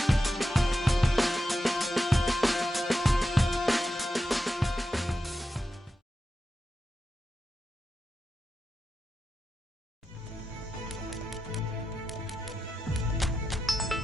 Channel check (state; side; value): normal; both; correlation 0.89